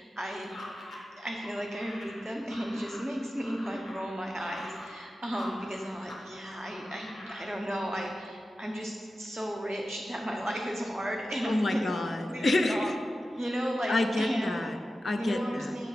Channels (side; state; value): both; normal; correlation 0.93